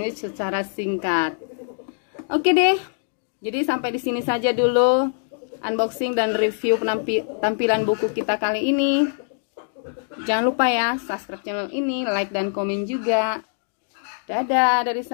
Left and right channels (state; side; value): silent; right; digital silence